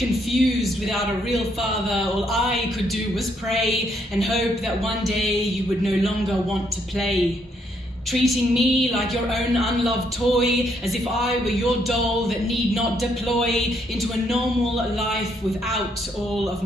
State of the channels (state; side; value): normal; both; correlation 0.73